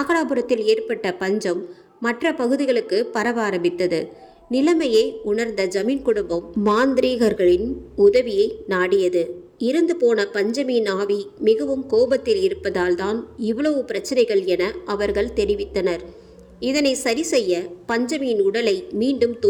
ஏற்பட்ட பஞ்சம் மற்ற பகுதிகளுக்கு பரவ ஆரம்பித்தது. நிலைமையை உணர்ந்த ஜமீன் குடும்பம் மாந்திரீகர்களின் உதவியை நாடியது. இறந்து போன பஞ்சமியின் ஆவி மிகவும் கோபத்தில் இருப்பதால் தான் இவ்வளவு பிரச்சனைகள் என அவர்கள் தெரிவித்தனர். இதனை சரி செய்ய பஞ்சமியின் உடலை மீண்டும்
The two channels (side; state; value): both; identical; correlation 1.00